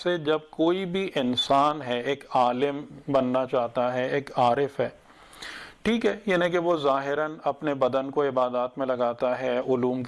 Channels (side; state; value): both; identical; correlation 1.00